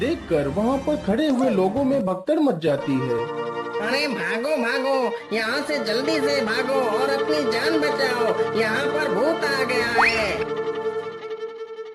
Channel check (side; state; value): both; identical; correlation 1.00